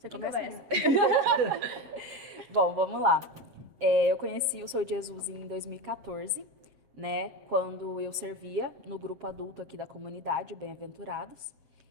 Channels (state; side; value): late; left; 7.3 ms